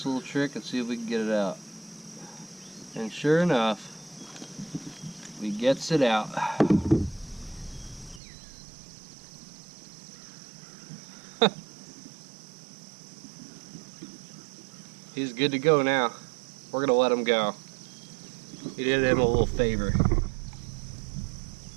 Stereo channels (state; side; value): drops out; left; at 8.2 s